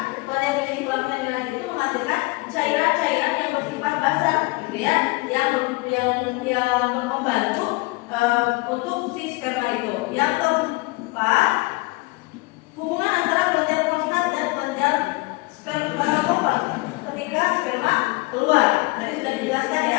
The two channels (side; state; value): right; quieter; 24.5 dB